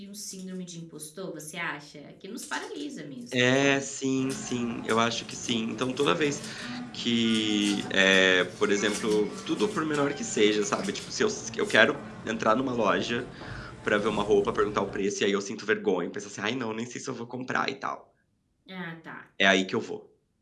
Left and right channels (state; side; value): identical; both; correlation 1.00